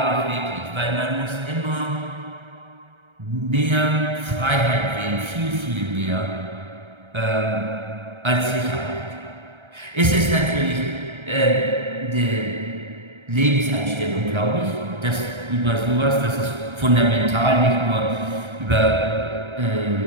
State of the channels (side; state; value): left; late; 1.3 ms